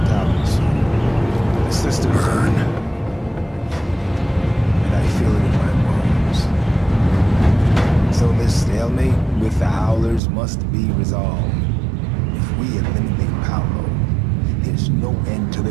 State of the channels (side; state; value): left; drops out; at 10.2 s